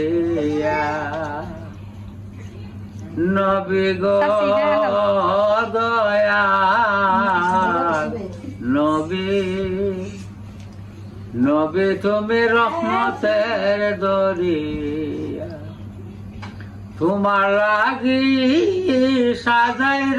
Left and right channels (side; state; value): both; identical; correlation 1.00